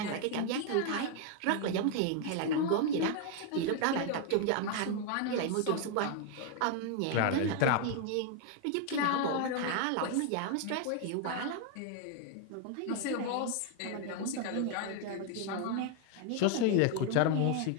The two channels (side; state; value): both; different; correlation 0.00